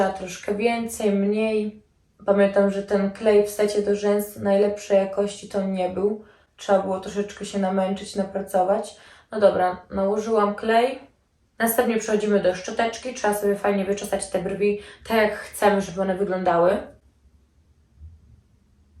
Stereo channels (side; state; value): both; identical; correlation 1.00